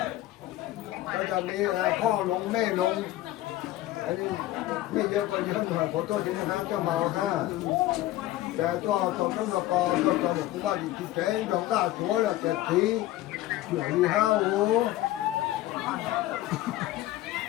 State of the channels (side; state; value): right; quieter; 15.5 dB